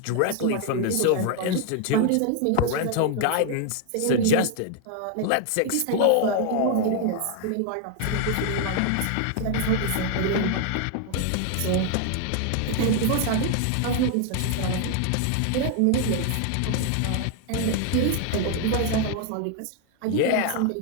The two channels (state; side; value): different; both; correlation 0.00